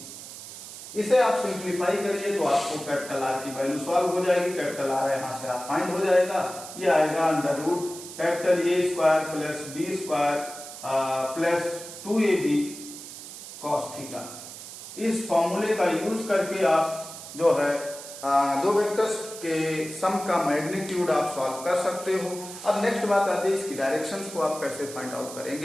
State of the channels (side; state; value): right; noise; hiss, 12 dB below the sound